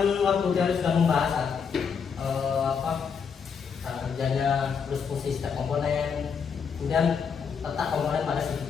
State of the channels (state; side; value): quieter; right; 6.4 dB